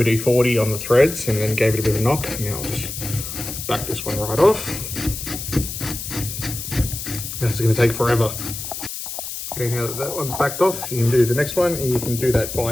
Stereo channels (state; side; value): noise; left; hiss, 7 dB below the sound